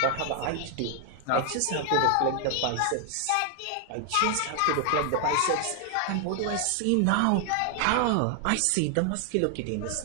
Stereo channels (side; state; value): both; different; correlation 0.00